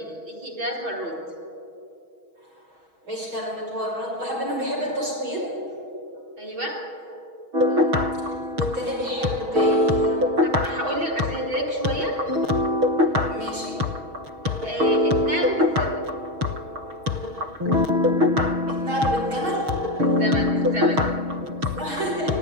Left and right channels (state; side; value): late; left; 6.3 ms